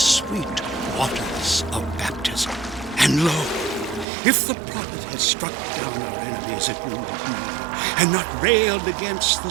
waters of baptism. And lo, if the prophet had struck down our enemies at Wounded Knee and not railed against the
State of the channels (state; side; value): drops out; left; at 4.0 s